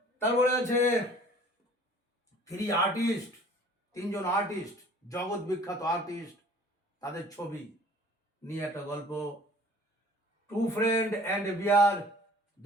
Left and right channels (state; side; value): normal; both; correlation 0.50